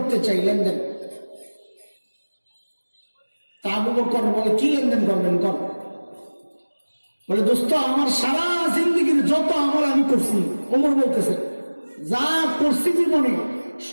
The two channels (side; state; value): both; inverted; correlation -1.00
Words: চাই, লেনদেন। তা আবু বকর বলে, কি লেনদেন করবেন? কর। বলে, দোস্ত আমার সারা জিন্দগির যত আমল আমি করছি, ওমর বলতেছে, যা করছি জীবনে